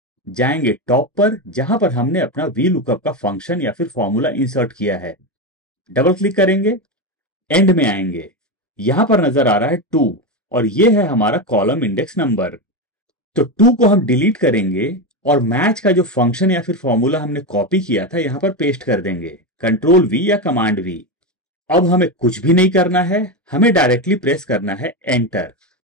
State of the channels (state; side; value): normal; both; correlation 0.14